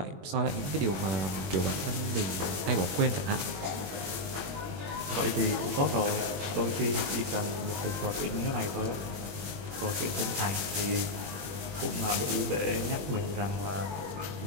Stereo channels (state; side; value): late; left; 21 ms